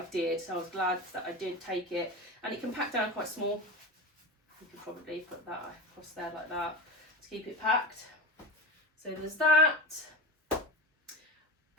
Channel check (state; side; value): normal; both; correlation 0.26